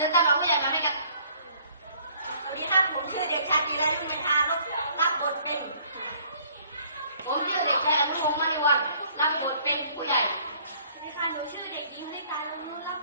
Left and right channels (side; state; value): both; inverted; correlation -0.58